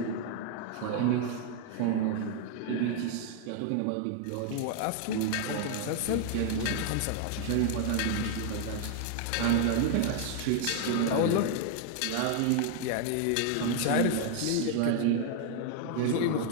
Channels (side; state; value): both; different; correlation 0.00